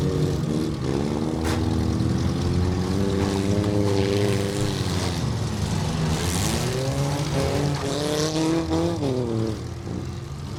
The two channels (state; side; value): identical; both; correlation 1.00